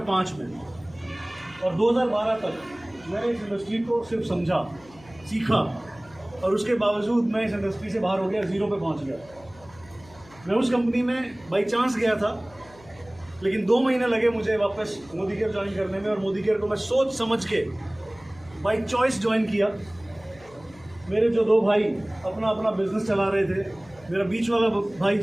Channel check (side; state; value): left; noise; hum, 24 dB below the sound